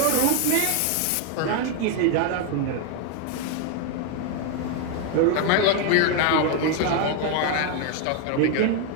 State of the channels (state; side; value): different; both; correlation 0.01